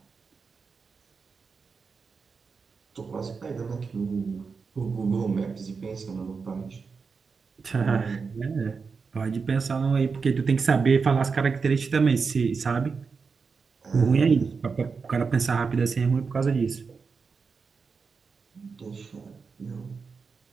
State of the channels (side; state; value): left; quieter; 5.1 dB